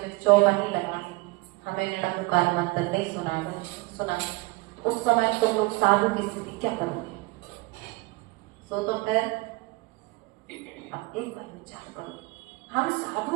चौका नहीं लगानी, हमें निरंकार मंत्र नहीं सुना, उस समय तुम लोग साधु की स्थिति क्या करोगे? सो तो फिर अब एक बार विचार करो। हम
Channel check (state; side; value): quieter; left; 23.0 dB